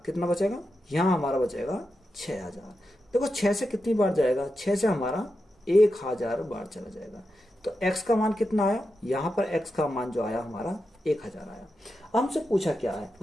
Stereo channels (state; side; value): normal; both; correlation 0.88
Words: बचेगा, यहाँ हमारा बचेगा 6,000। देखो 6 से कितनी बार जाएगा, 6 से हमारा 1,000 बार चला जाएगा। तो x का मान कितना आया, यहाँ पर x का मान जो आया हमारा 1,000 आया। हमसे पूछा क्या है,